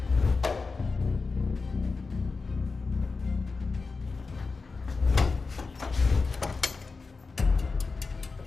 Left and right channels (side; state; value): right; quieter; 4.3 dB